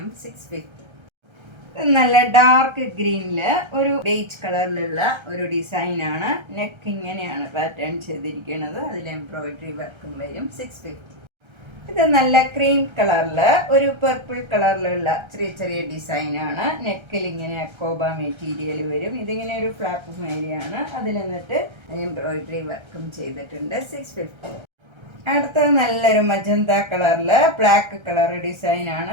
650. നല്ല ഡാർക്ക് ഗ്രീനിൽ ഒരു ബേജ് കളറിലുള്ള ഒരു ഡിസൈനാണ്. നെക്ക് ഇങ്ങനെയാണ് പാറ്റേൺ ചെയ്തിരിക്കുന്നത്, അതിൽ എംബ്രോയിഡറി വർക്കും വരും 650. ഇത് നല്ല ക്രീം കളറിൽ ഒരു പർപ്പിൾ കളറിലുള്ള ചെറിയ ചെറിയ ഡിസൈനാണ്. നെക്കിൽ ഇങ്ങനെ അക്കോബ മെറ്റീരിയൽ വരും. ഇതിങ്ങനെ ഒരു ഫ്ലാപ്പ് മേരിയാണ്, അതിൽ എന്നിട്ട് എംബ്രോയിഡറി വർക്കും ചെയ്തിട്ടുണ്ട് 650. അടുത്തത് നല്ലൊരു മജന്ത കളറിൽ ബ്ലാക്ക് കളർ ഡിസൈനാണ്.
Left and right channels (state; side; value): late; left; 1.3 ms